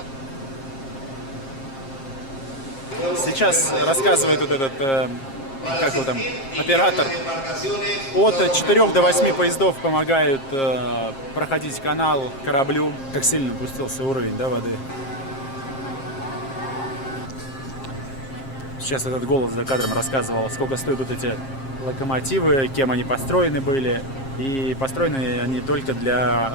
Сейчас рассказывает вот этот, как его там, оператор. От 4 до 8 поездов помогают проходить канал кораблю. Как сильно опустился уровень, да, воды. Сейчас этот голос за кадром рассказывал, сколько стоят вот эти локомотивы, кем они построены были. И построены они только для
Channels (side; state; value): right; late; 7.4 ms